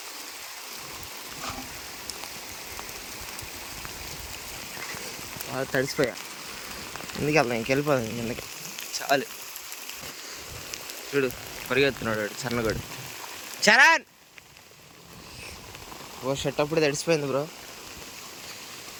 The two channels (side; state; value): both; identical; correlation 1.00